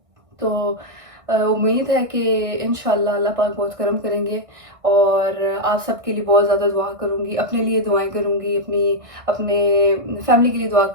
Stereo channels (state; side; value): late; left; 1.6 ms